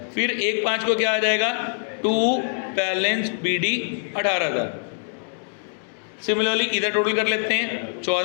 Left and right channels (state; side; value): silent; right; digital silence